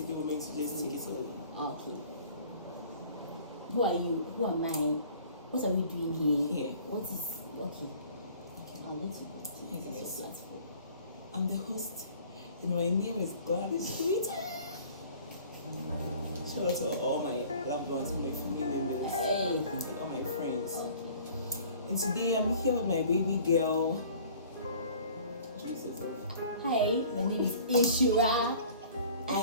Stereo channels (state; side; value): inverted; both; correlation -0.50